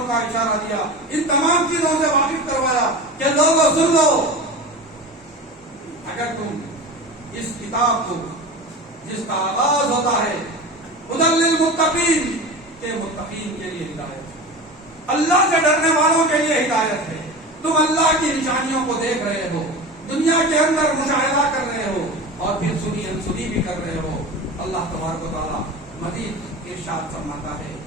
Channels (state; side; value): normal; both; correlation 0.30